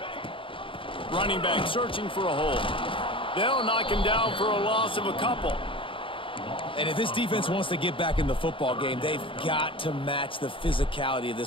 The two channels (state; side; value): late; right; 0.25 ms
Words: Running back searching for a hole. They'll knock him down for a loss of a couple. And if this defense wants to get back in the football game, they've got to match the physicality of